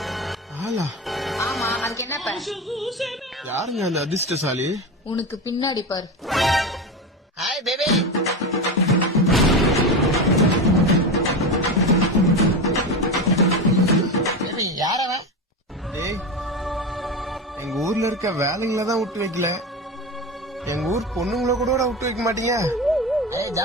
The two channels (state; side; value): normal; both; correlation 0.21